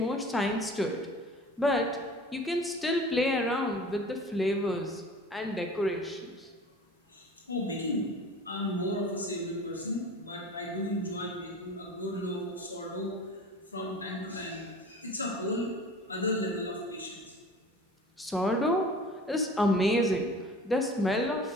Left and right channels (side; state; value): both; normal; correlation 0.41